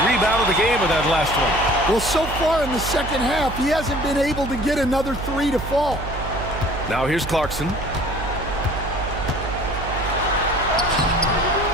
rebound of the game with that last one. Well, so far in the second half, he hasn't been able to get another 3 to fall. Now here's Clarkson.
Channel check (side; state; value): right; noise; hum, 8 dB below the sound